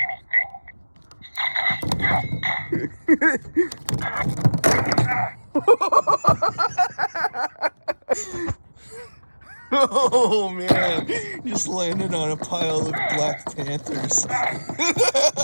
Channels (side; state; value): both; inverted; correlation -1.00